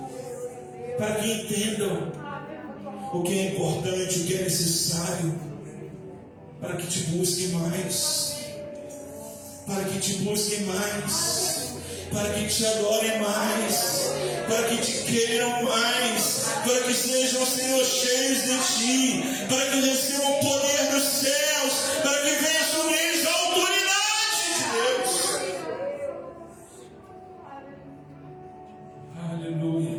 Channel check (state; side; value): identical; both; correlation 1.00